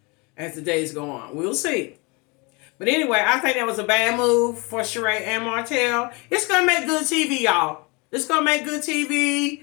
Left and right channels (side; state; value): right; quieter; 28.6 dB